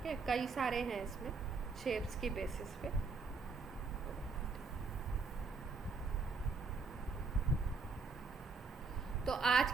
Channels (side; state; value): left; quieter; 4.4 dB